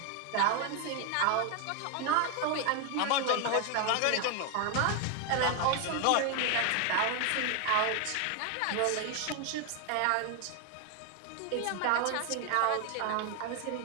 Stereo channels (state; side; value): different; both; correlation 0.01